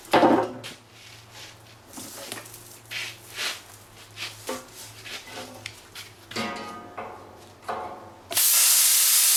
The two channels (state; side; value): identical; both; correlation 1.00